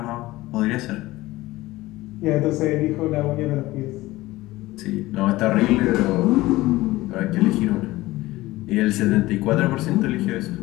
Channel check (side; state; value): right; quieter; 18.4 dB